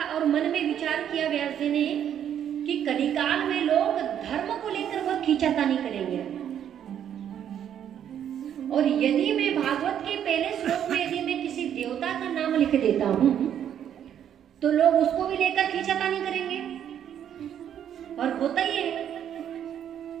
और मन में विचार किया व्यास जी ने कि कलिकाल में लोग धर्म को लेकर बहुत खींचातानी करेंगे, और यदि मैं भागवत के पहले श्लोक में यदि मैं किसी देवता का नाम लिख देता हूं, तो लोग उसको भी लेकर खींचातानी करेंगे। और होता ही है,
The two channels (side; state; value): left; quieter; 9.6 dB